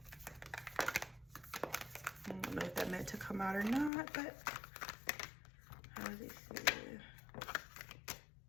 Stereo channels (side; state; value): right; drops out; at 3.9 s